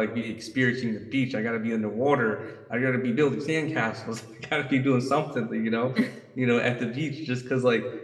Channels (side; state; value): both; identical; correlation 1.00